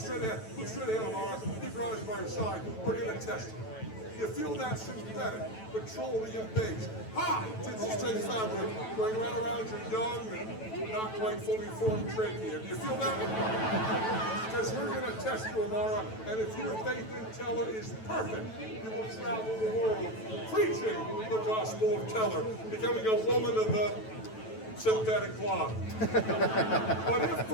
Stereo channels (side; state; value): right; late; 9.1 ms